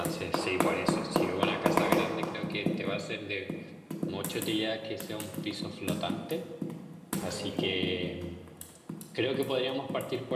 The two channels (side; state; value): both; identical; correlation 1.00